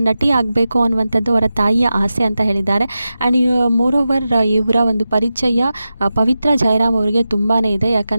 ನಟಿ ಆಗಬೇಕು ಅನ್ನುವಂಥದ್ದು ಅವರ ತಾಯಿಯ ಆಸೆ ಅಂತ ಹೇಳಿದ್ದಾರೆ. ಆ್ಯಂಡ್ ಮೋರೋವರ್ ಇವರ ಒಂದು ಪರಿಚಯ ಪವಿತ್ರ ಜಯರಾಮ್ ಅವರಿಗೆ ತುಂಬಾ ಇದೆ.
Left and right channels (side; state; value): both; inverted; correlation -0.92